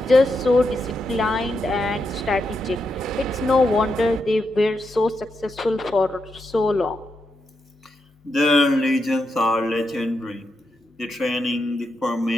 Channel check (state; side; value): normal; both; correlation 0.84